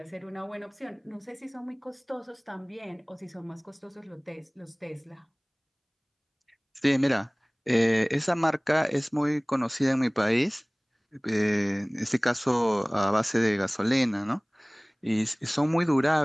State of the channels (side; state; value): both; identical; correlation 1.00